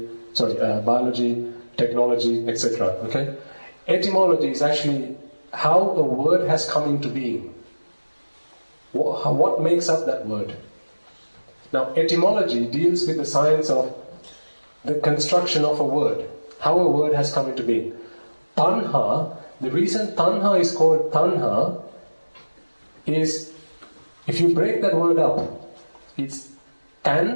biology, technology, etc. Okay? Etymology is actually how a word has come into being. What makes up that word? Now, etymology deals with the science of the construction of a word, how a word has come into being. Tanha, the reason tanha is called tanha is, if you break that word up, it's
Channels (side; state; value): both; inverted; correlation -1.00